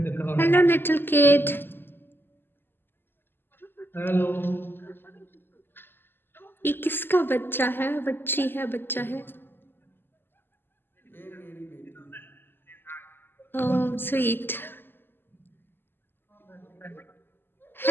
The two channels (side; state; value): right; late; 0.099 ms